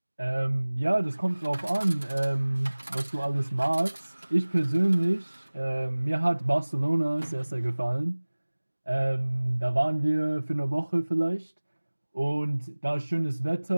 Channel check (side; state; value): both; inverted; correlation -1.00